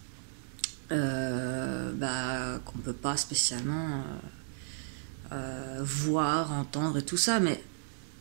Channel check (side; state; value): left; silent; digital silence